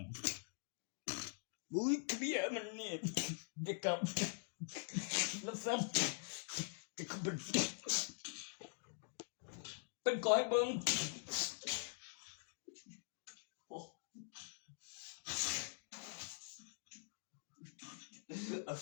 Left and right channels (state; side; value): silent; right; digital silence